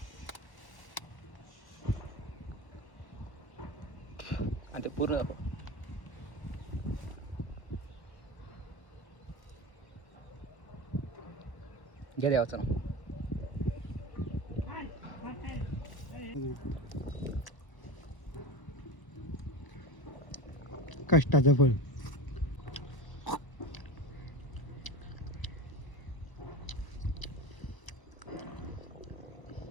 आणि ते पूर्ण घ्या द्यावाचं ना. कष्टाचं फळ.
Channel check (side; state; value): right; late; 1.2 ms